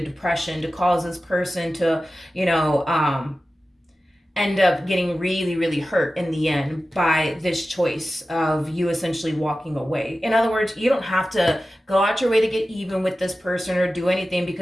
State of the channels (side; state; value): both; normal; correlation 0.94